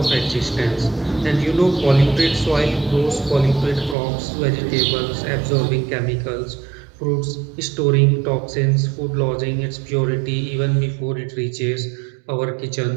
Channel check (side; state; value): left; drops out; at 4.0 s